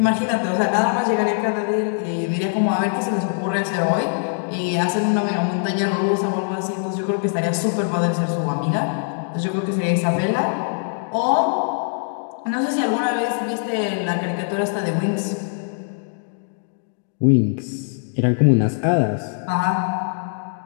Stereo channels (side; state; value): right; silent; digital silence